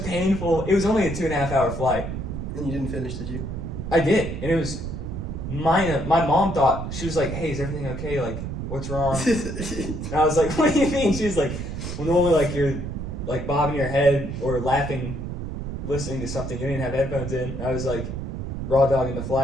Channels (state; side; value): noise; right; rumble, 6 dB below the sound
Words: painful, it was only a 2.5 hour flight. And you didn't finish, did you? I did, and it was minor. My mom thought, she was like, hey, is everything okay? Like, what's wrong? And I was like, what do you mean? She was like, well, normally like you're like bobbing your head or laughing, listening to something. You didn't have headphones in. I was like, raw dogging the